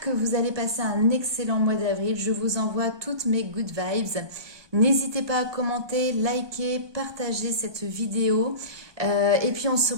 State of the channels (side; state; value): left; late; 1.2 ms